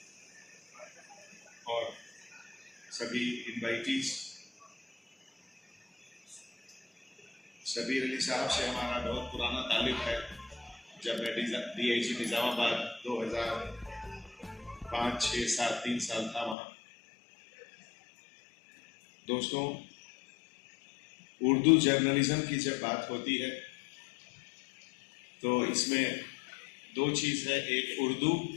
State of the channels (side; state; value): right; drops out; at 16.6 s